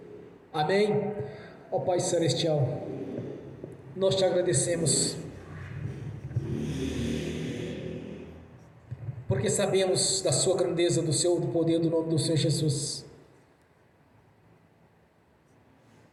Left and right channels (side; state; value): both; identical; correlation 1.00